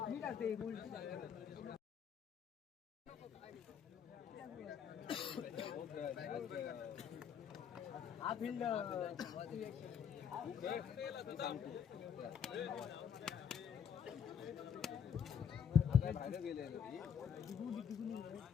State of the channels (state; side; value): quieter; right; 7.7 dB